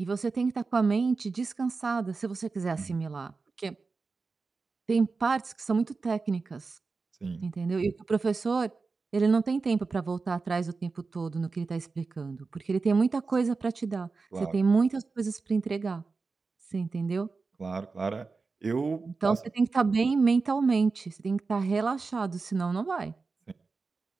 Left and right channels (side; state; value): left; quieter; 4.3 dB